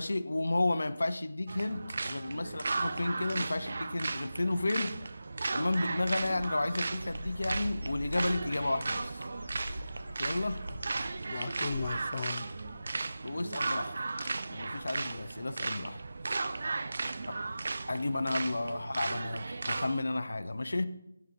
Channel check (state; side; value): inverted; both; correlation -0.95